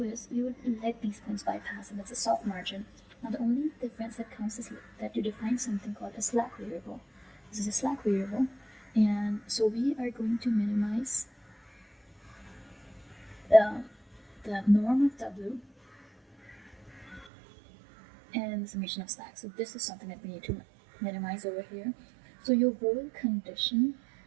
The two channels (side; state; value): left; drops out; at 17.3 s